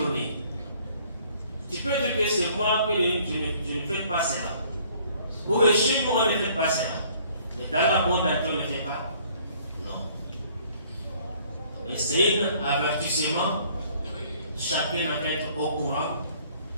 Tu peux dire que c'est moi que je ne fais pas cela. Ou que chez moi, on ne fait pas cela. Mais dans la monde, on ne le fait pas. Et c'est un avertissement, chacun doit être au courant,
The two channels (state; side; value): inverted; both; correlation -0.59